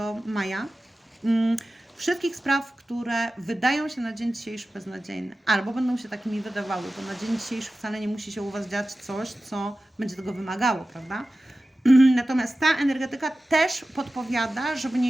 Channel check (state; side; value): normal; both; correlation 0.95